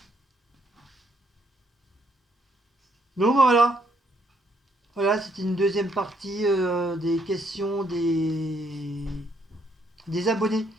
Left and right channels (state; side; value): normal; both; correlation 0.71